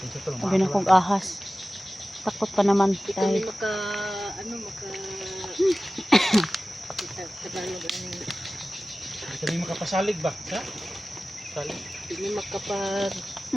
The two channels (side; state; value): both; normal; correlation 0.96